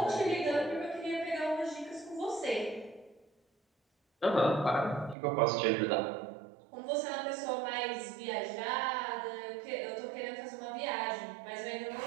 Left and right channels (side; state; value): left; drops out; at 5.2 s